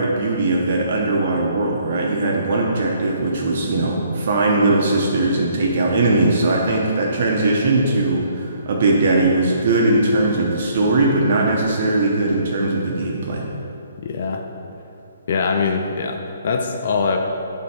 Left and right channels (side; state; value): both; inverted; correlation -0.63